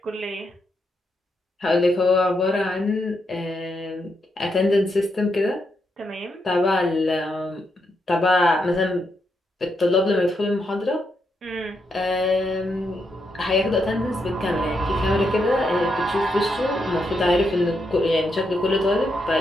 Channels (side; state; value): both; normal; correlation 0.81